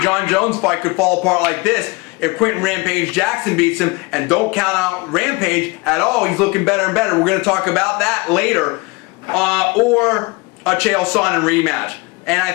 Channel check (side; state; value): right; quieter; 25.6 dB